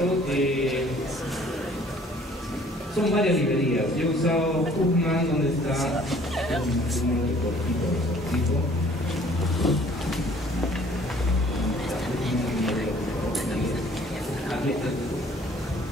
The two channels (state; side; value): normal; both; correlation 0.55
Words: son varias librerías. Yo he usado Huffman, donde está